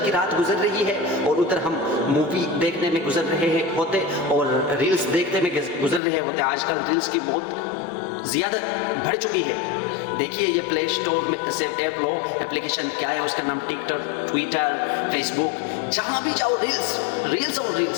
کی رات گزر رہی ہے اور ادھر ہم مووی دیکھنے میں گزر رہے ہوتے اور ریلز دیکھنے میں گزر رہے ہوتے۔ آج کل ریلز کی بہت زیادہ بڑھ چکی ہے۔ دیکھیے یہ پلے اسٹور میں سے ایپ لو، اپلیکیشن کیا ہے، اس کا نام ٹک ٹاک، ٹویٹر، فیس بک، جہاں بھی جاؤ ریلز اور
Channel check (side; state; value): right; drops out; at 6.0 s